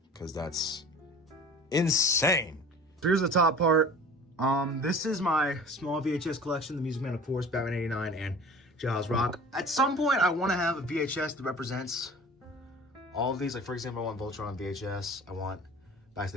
because that's insane. Here's the top part. This is my small VHS collection, The Music Man, of course, Batman 89, and Jaws Rock. At some point, I want to have a VHS that represents all of these. Like, for example, I want Voltron on VHS. I want Back to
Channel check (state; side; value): normal; both; correlation 0.41